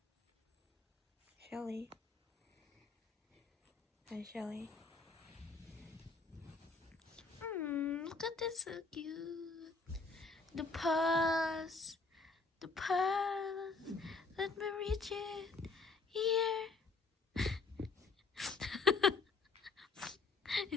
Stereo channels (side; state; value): right; quieter; 4.1 dB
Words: Shelly. Hi, Shelly. Look at this, so cute. The paws. The paws. Let me reach it. Here.